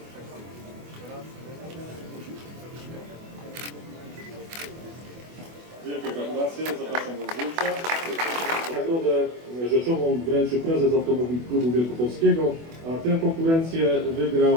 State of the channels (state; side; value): late; left; 24 ms